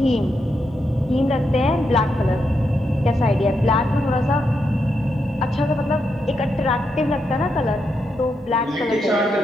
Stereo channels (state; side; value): normal; both; correlation 0.83